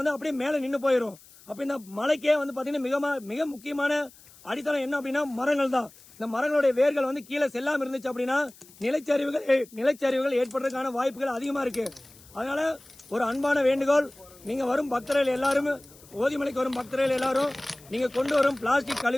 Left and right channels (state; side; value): noise; left; hiss, 24 dB below the sound